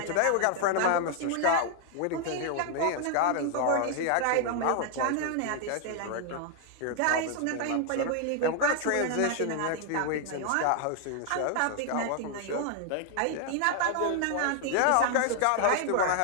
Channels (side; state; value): both; different; correlation 0.00